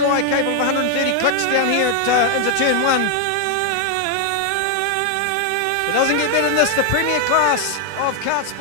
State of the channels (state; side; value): different; both; correlation 0.00